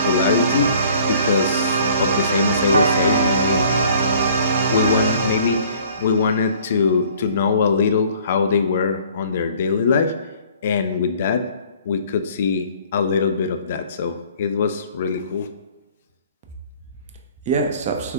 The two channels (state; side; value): inverted; both; correlation -0.55